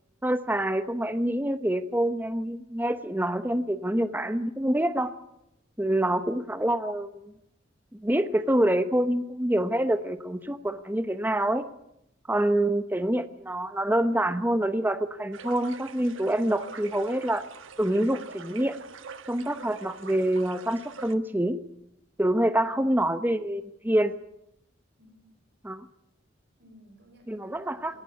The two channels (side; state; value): both; normal; correlation 0.87